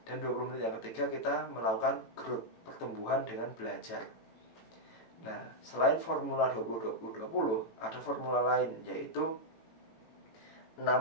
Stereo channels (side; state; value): right; late; 18 ms